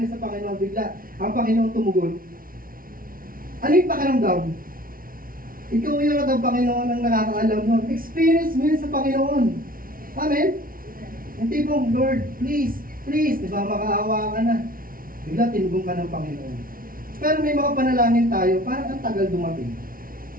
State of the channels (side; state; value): left; late; 0.42 ms